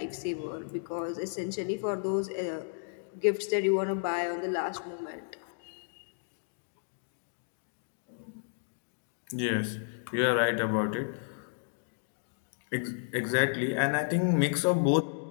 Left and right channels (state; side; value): silent; right; digital silence